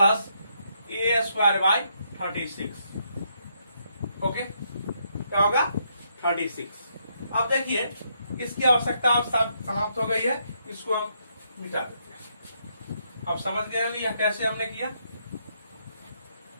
A²/36। Okay, क्या होगा, 36। अब देखिए इसकी आवश्यकता अब समाप्त हो गई है, इसको हम मिटा देते हैं। अब समझ गए होंगे यह कैसे हमने किया।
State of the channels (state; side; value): inverted; both; correlation -0.76